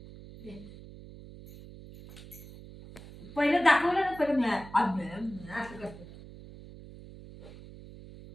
पहिलं दाखवलं ना पहिलं मिळाल असं करतो.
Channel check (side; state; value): right; noise; hum, 17 dB below the sound